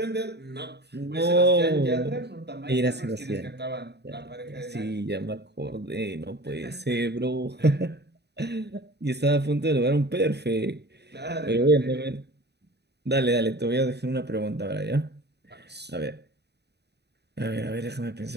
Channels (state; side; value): late; left; 0.49 ms